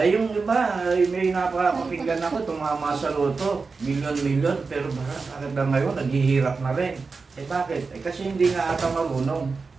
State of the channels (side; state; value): left; quieter; 4.5 dB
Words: yung iba, may napakapakinggan ako, tumama sa loto, milyon-milyon, pero bakit na ngayon, naghihirap na rin. Bakit? Kasi hindi nga ata marunong